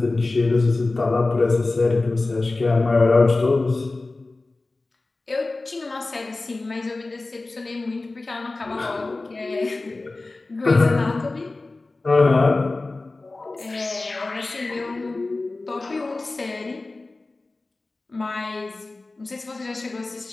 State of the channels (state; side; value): quieter; right; 3.3 dB